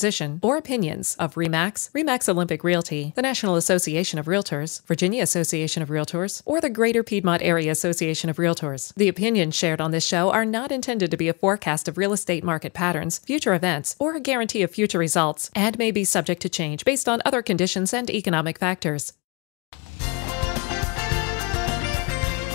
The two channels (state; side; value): quieter; right; 30.2 dB